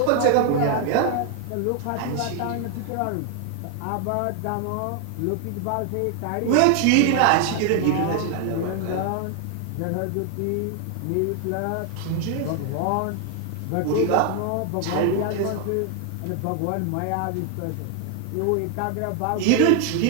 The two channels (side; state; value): both; different; correlation 0.00